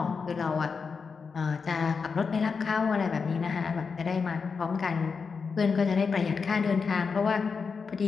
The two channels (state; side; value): quieter; right; 5.3 dB